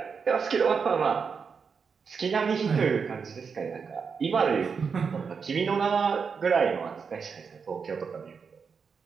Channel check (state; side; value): quieter; left; 5.8 dB